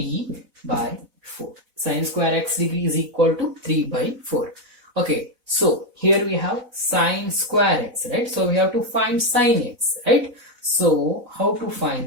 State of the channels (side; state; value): left; late; 4.0 ms